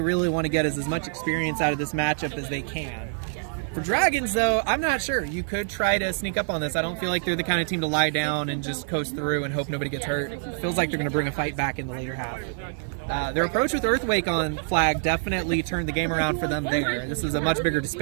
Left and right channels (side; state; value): left; silent; digital silence